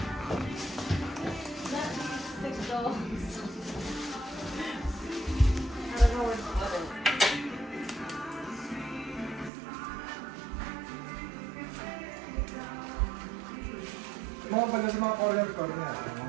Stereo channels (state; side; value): drops out; left; at 9.5 s